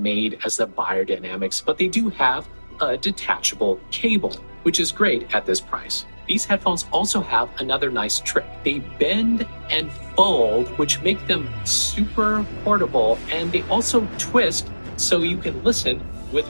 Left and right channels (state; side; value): inverted; both; correlation -1.00